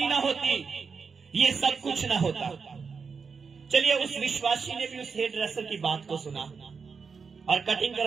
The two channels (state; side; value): quieter; left; 5.4 dB